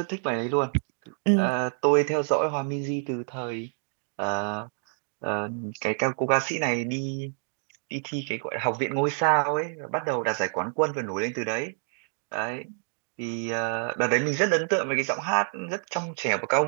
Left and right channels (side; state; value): left; silent; 60 dB below the other